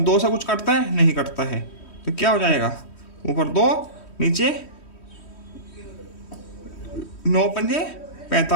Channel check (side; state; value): right; late; 3.1 ms